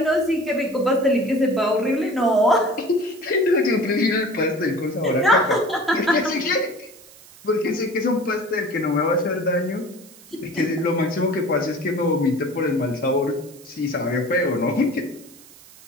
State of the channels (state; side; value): noise; right; hiss, 22 dB below the sound